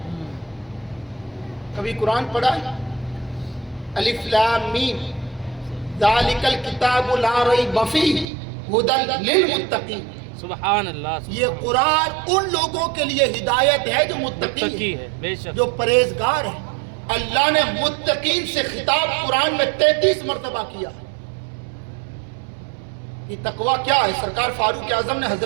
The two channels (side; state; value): left; drops out; at 8.2 s